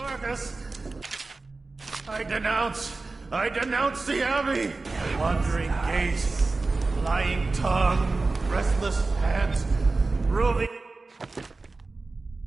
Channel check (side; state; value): left; quieter; 3.6 dB